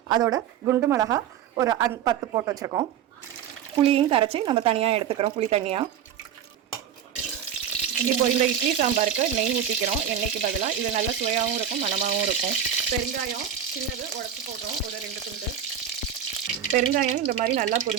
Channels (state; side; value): quieter; left; 9.0 dB